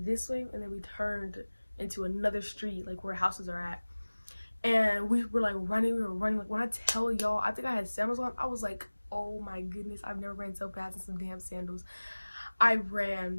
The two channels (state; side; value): inverted; both; correlation -1.00